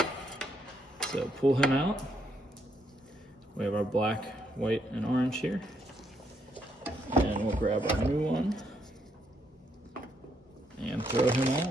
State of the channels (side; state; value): both; normal; correlation 0.75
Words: So pull him out. We have our black, white, and orange here. And we'll grab our new one and throw him